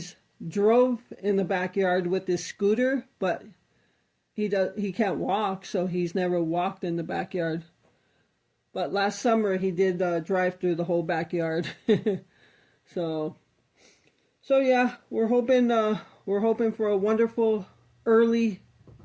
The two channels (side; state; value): both; identical; correlation 1.00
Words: drove in the backyard with his scooter, but he can't walk, so he's never walked in the backyard. But last summer he did drive through the whole backyard. so yeah, we're hoping for a wonderful early